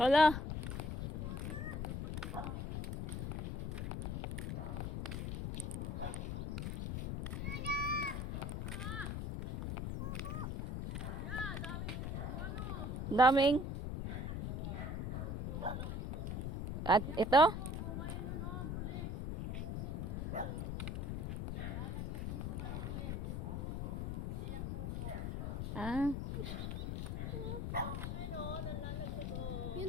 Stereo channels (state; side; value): noise; left; rumble, 2 dB below the sound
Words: Daming. At ito? Ah.